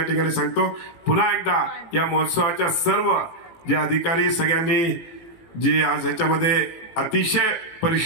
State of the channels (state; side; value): late; right; 18 ms